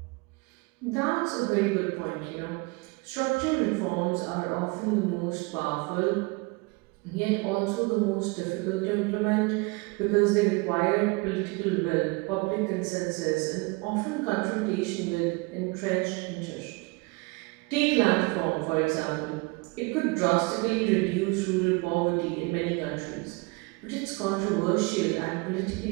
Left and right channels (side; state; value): left; quieter; 26.8 dB